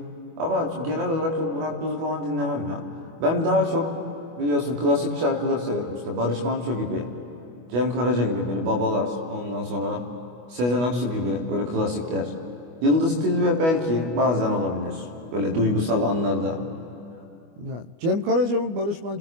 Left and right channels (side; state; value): left; late; 25 ms